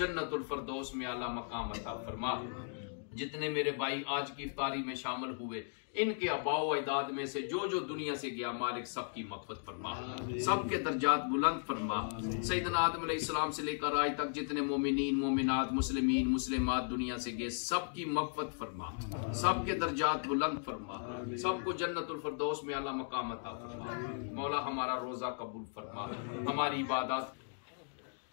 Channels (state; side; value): silent; right; digital silence